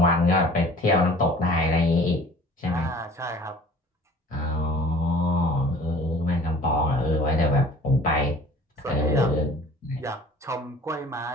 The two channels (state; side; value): normal; both; correlation 0.48